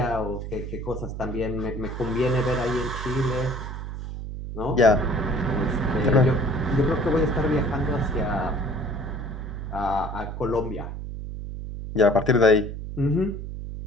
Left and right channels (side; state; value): right; noise; hum, 7 dB below the sound